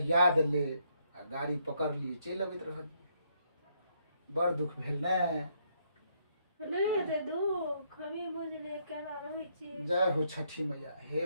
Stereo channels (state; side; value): inverted; both; correlation -0.73